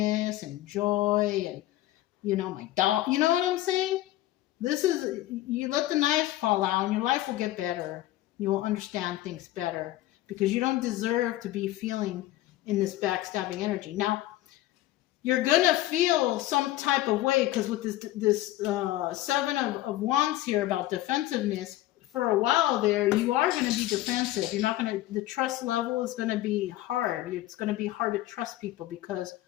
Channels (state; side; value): quieter; right; 15.7 dB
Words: and joy and, my dog. You know what I'm saying? You let the knives fall out and your life will get better. You will understand things better because you don't deserve to be feeling in this backstabbing energy. Now, you're going to feel some type of way because with this Seven of Wands here about defensiveness, for a while there, you are going to be defensive. You're not going to, the trust level is going to be hard. It's going to be hard to trust people because